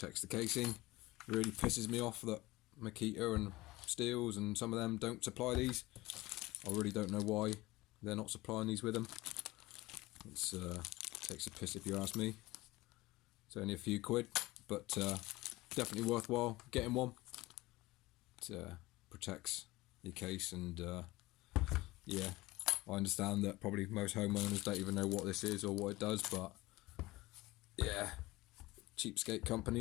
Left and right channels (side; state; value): right; quieter; 19.8 dB